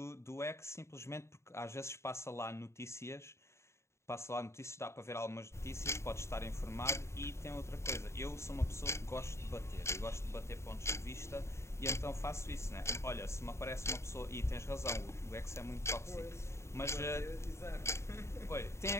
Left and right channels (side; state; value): right; late; 0.13 ms